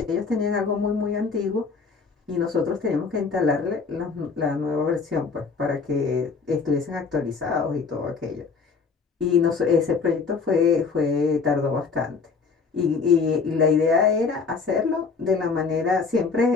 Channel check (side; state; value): right; quieter; 4.9 dB